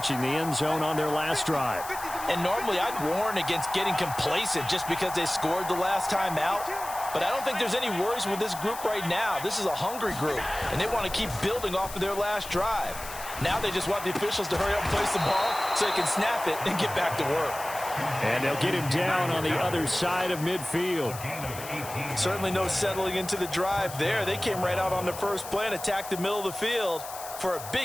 the end zone on their last drive. And normally I'd warn against getting complacent just because they scored the last time out. But I don't think there's any worries with this group right now. This is a hungry group, and they want to keep building off of their last drive. Now they just want the officials to hurry up and place the ball so they can snap it and get back to work. And they'll get him down on the other side of midfield. Certainly no settling into the drive there. They came right out on the first play and attacked the middle of the field for a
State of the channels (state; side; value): noise; left; hiss, 12 dB below the sound